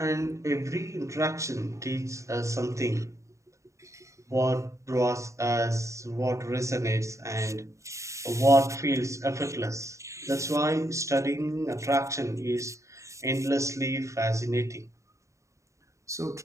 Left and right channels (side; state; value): left; late; 0.15 ms